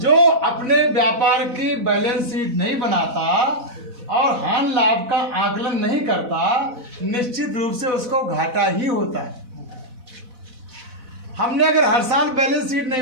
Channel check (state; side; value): late; left; 4.1 ms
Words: अपने व्यापार की बैलेंस शीट नहीं बनाता और हानि लाभ का आकलन नहीं करता, निश्चित रूप से उसको घाटा ही होता है। हमने अगर हर साल बैलेंस शीट नहीं